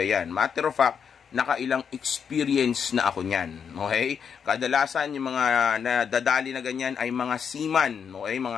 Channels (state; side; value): quieter; right; 7.1 dB